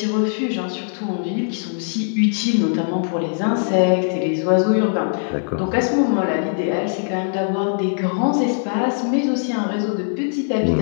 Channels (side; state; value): right; silent; digital silence